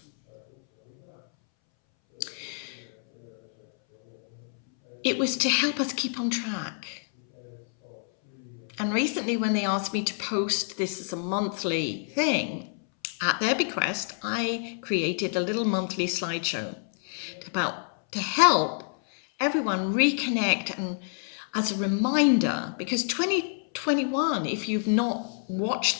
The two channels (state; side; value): silent; right; 60 dB below the other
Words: It was to help us keep on track. And recently when they asked me to post this as a monthly thing, at their bequest, I created a little monthly slideshow to help everyone reconnect and as a reminder, because 2021, if you've not